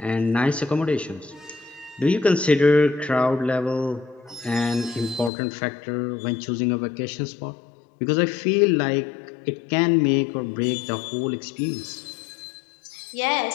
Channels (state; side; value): drops out; right; at 5.3 s